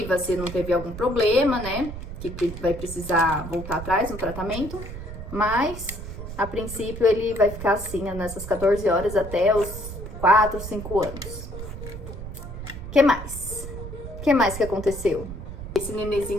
se não teve algum problema, né? Que vai precisar voltar atrás no tratamento. Mas, a princípio, ele vai ficar assim nessas 14 horas até os 4, 5 anos. O que mais? O que mais que aconteceu? Esse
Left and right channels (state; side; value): noise; right; rumble, 9 dB below the sound